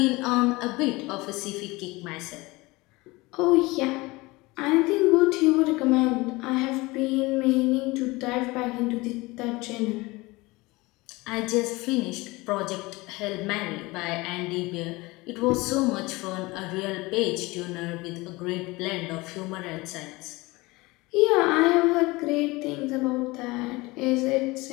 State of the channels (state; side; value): quieter; right; 22.4 dB